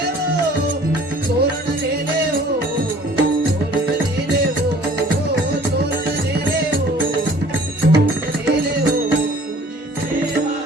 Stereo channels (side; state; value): both; normal; correlation 0.52